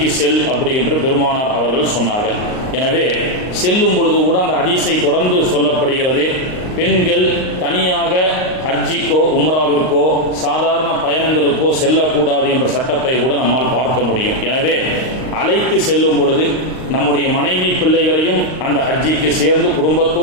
செல் அப்படி என்று பெருமானார் அவர்கள் சொன்னார்கள். எனவே செல்லும் பொழுது கூட அந்த ஹதீஸை தொடர்ந்து சொல்லப்படுகிறது, பெண்கள் தனியாக ஹஜ்ஜிக்கோ உம்ராவிற்கோ சாதாரண பயணங்களுக்கோ செல்லக்கூடாது என்ற சட்டத்தை கூட நம்மால் பார்க்க முடியும். எனவே அழைத்து செல்லும் பொழுது நம்முடைய மனைவி பிள்ளைகளையும் அந்த ஹஜ்ஜிக்கு சேர்ந்து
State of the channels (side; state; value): right; late; 38 ms